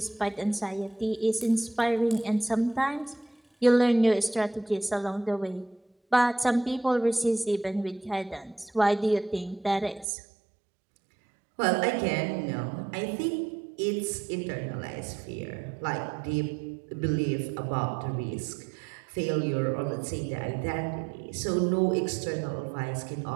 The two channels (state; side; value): drops out; left; at 10.1 s